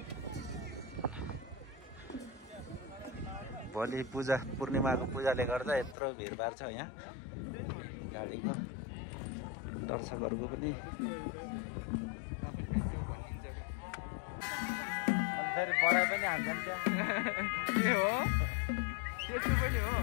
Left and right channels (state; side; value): drops out; right; at 6.0 s